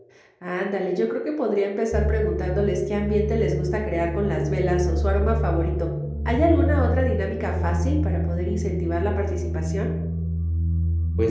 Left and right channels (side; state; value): both; identical; correlation 1.00